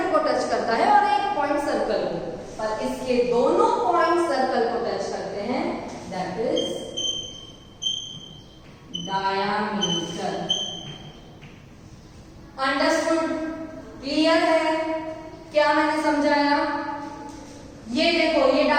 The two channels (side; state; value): both; identical; correlation 1.00